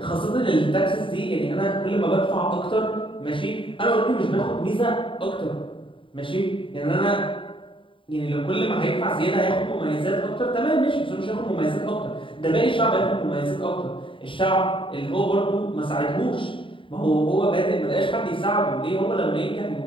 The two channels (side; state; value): right; late; 0.25 ms